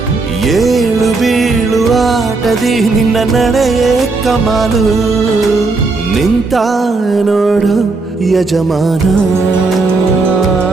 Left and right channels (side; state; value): left; quieter; 3.7 dB